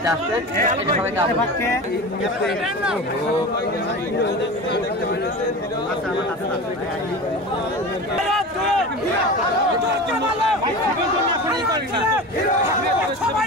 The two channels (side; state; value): both; normal; correlation 0.30